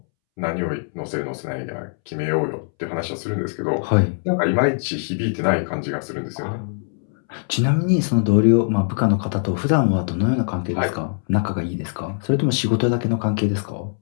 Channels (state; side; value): silent; right; 64 dB below the other